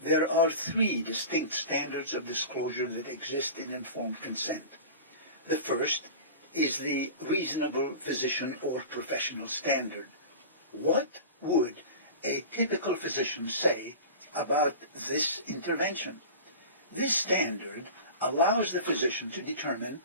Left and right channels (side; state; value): both; inverted; correlation -0.33